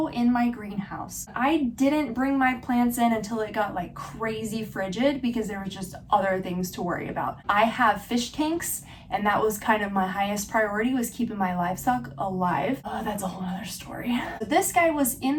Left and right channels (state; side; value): identical; both; correlation 1.00